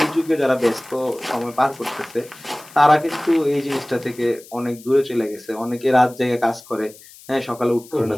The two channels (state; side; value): noise; left; hiss, 21 dB below the sound